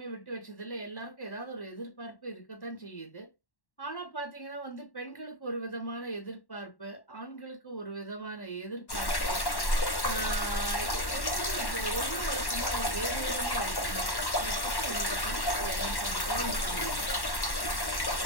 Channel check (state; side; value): late; right; 1.1 ms